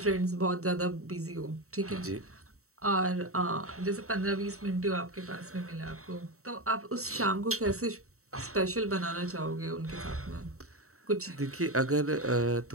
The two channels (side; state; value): left; late; 0.64 ms